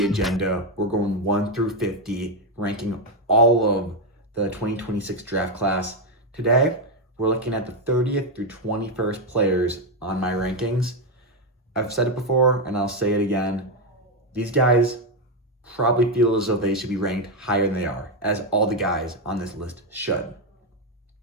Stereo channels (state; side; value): normal; both; correlation 0.05